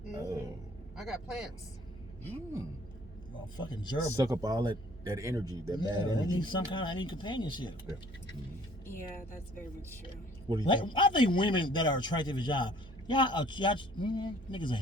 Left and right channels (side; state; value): both; normal; correlation 0.55